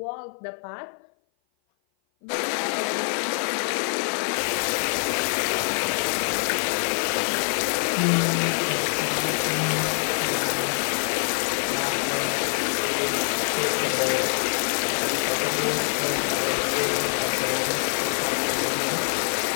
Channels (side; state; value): right; silent; 56 dB below the other